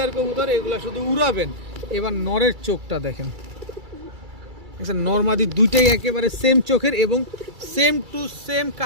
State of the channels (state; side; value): late; left; 2.3 ms